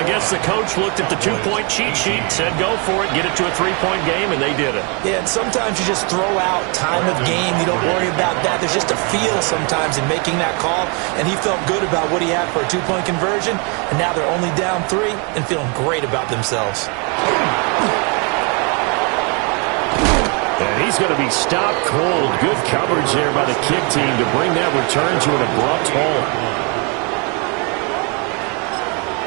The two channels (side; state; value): left; quieter; 33.8 dB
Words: guess the coach looked at the 2-point cheat sheet, said go for it, get it to a 3-point game, and they did it. Yeah, and sometimes you just throw out time of game. You don't worry about that. There's just a feel sometimes in making that call, and he felt good about what he had for a 2-point conversion, and now they're only down 3 and feeling great about themselves. And he's going to be stopped cold. Good coverage there by the kick team to bring that return to an abrupt halt.